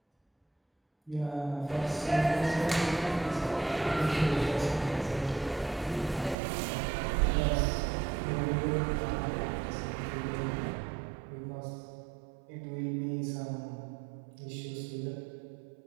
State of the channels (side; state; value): left; drops out; at 6.4 s